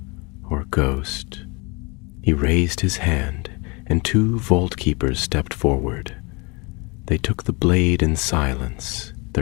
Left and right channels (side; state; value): right; quieter; 28.6 dB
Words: or ghost. He raised his hand, and 2 vault keepers stepped forward. They took the blade in silence,